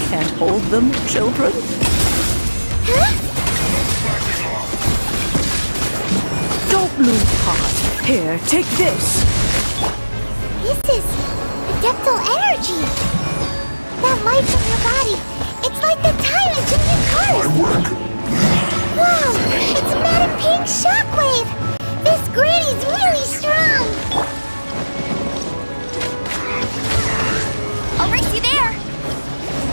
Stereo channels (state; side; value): inverted; both; correlation -1.00